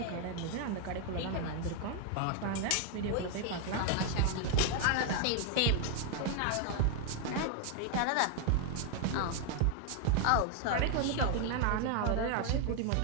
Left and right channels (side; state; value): both; different; correlation 0.00